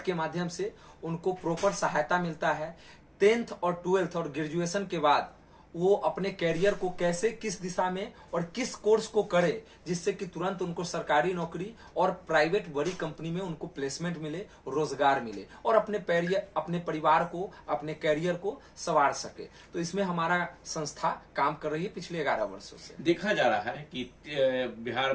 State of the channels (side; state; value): both; identical; correlation 1.00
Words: के माध्यम से उनको प्रॉपर सहायता मिलता है। 10th और 12th और ग्रेजुएशन के बाद वो अपने कैरियर को कैसे, किस दिशा में और किस कोर्स को करे, जिससे कि तुरंत उनको सरकारी नौकरी और प्राइवेट बड़ी कंपनी में उनको प्लेसमेंट मिले, रोजगार मिले और अपने परिवार को, अपने कैरियर को संवार सके। तो इसमें हमारा संस्था काम कर रही है पिछले 11 वर्षों से। देखा जा रहा है कि बिहार